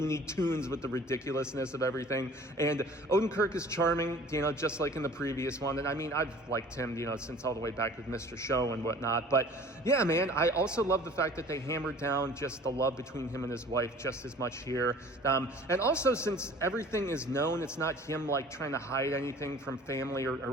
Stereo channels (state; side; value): normal; both; correlation 0.47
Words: Tunes with the ridiculousness of everything. And Odenkirk is charming, just like in the previous one. And I mean, I've liked him, since all the way back with Mr. Show and whatnot. But yeah, man, I also love the fact that they hammered down just the love between him and his wife just as much here. And also, since everything is known, it's not him trying to hide anything from family or